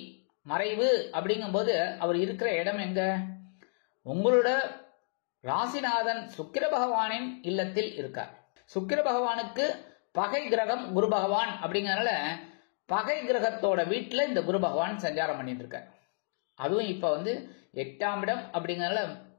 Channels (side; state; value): right; silent; 57 dB below the other